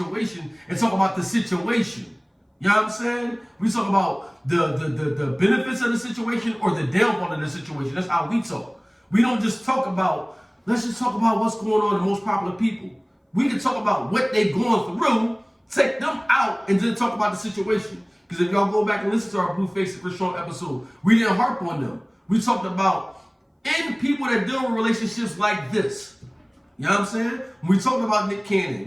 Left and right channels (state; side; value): identical; both; correlation 1.00